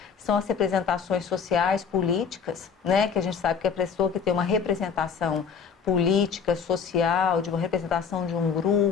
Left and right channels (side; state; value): right; quieter; 6.5 dB